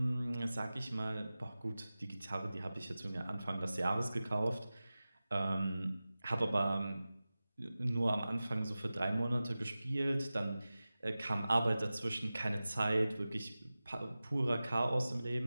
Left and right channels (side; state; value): both; inverted; correlation -0.96